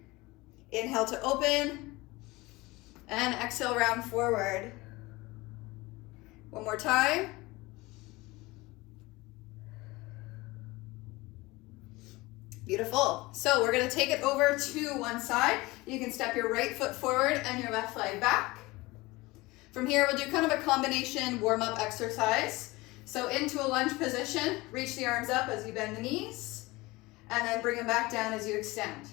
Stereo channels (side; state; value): right; quieter; 21.7 dB